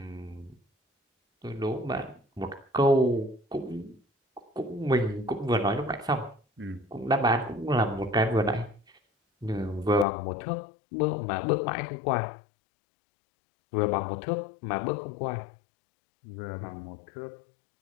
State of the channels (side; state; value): right; drops out; at 10.1 s